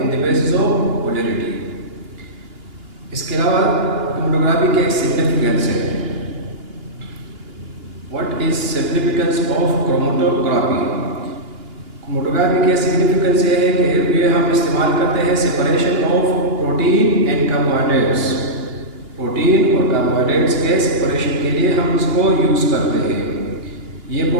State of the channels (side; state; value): left; late; 2.9 ms